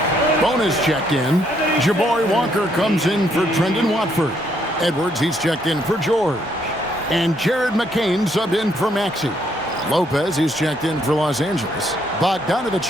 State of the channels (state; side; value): normal; both; correlation 0.71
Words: Bonus checked in. Jabari Walker comes in for Trendon Watford. Edwards, he's checked in for George. And Jared McCain subbed in for Maxey. Lopez, he's checked in for Los Angeles.